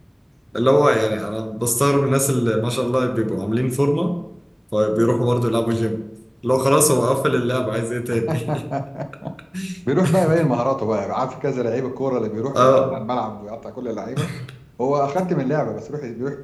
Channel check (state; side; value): identical; both; correlation 1.00